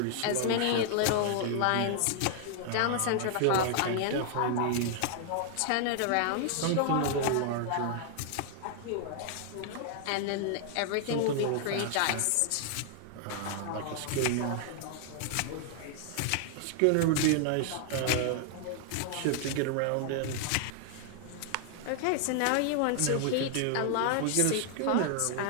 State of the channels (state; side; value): different; both; correlation 0.00